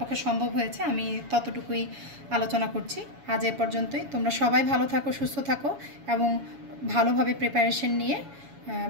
সম্ভব হয়েছে আমি ততটুকুই আলোচনা করছি। আজ এ পর্যন্তই। তোমরা সবাই ভালো থাকো, সুস্থ থাকো এবং ভালোভাবে প্রিপারেশন নিয়ে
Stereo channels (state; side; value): late; left; 7.1 ms